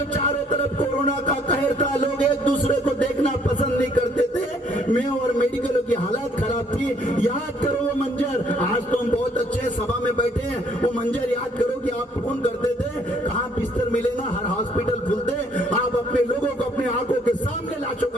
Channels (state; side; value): normal; both; correlation 0.64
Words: चारों तरफ कोरोना का कहर था, लोग एक दूसरे को देखना पसंद नहीं करते थे, मैं और मेडिकलों की हालत खराब थी। याद करो वो मंजर, आज तो हम बहुत अच्छे सभा में बैठे हैं, वो मंजर याद करो कि आप फोन करते थे कहाँ बिस्तर मिले ना, हर हॉस्पिटल खुलते, आप अपने लोगों को अपने आंखों के सामने लाशों